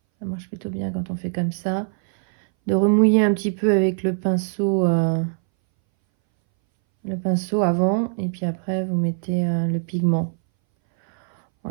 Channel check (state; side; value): silent; left; 61 dB below the other